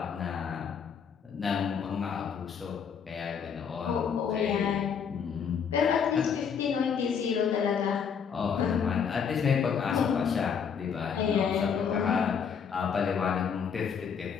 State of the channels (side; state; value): right; quieter; 6.9 dB